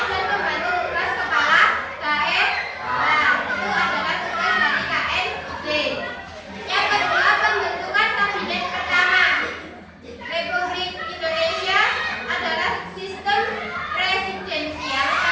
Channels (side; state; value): both; identical; correlation 1.00